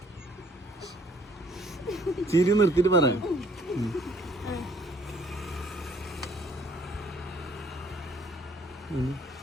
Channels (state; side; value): normal; both; correlation 0.61